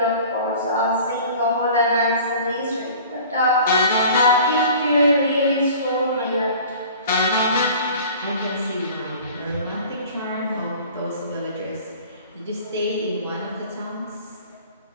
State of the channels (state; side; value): inverted; both; correlation -0.45